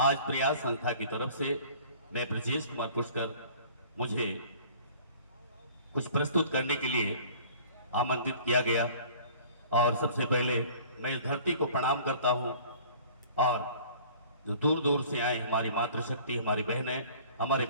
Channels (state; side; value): inverted; both; correlation -0.49